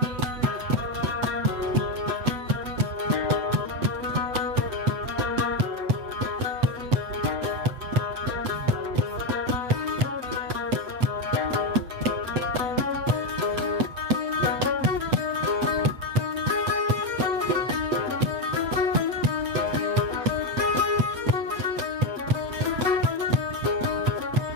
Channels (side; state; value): left; late; 8.3 ms